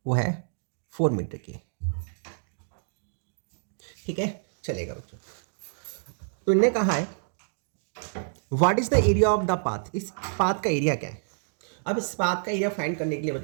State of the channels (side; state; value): left; silent; digital silence